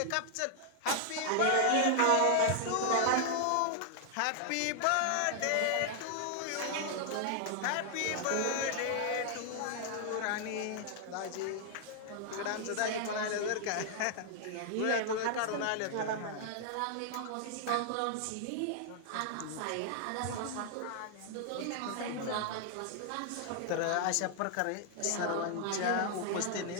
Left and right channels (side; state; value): both; different; correlation 0.00